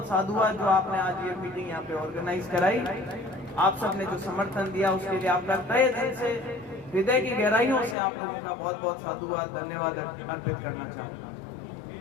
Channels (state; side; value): drops out; right; at 8.0 s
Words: साधुवाद जो आपने आज ये मीटिंग यहाँ पे ऑर्गेनाइज कराई। आप सबने जो समर्थन दिया उसके लिए आपका तहे दिल से, हृदय की गहराइयों से आप लोगों का बहुत बहुत साधुवाद, धन्यवाद अर्पित करना